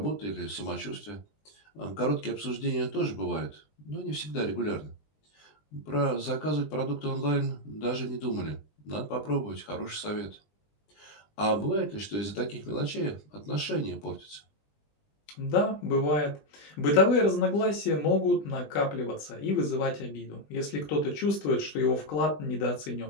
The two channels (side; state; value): right; late; 20 ms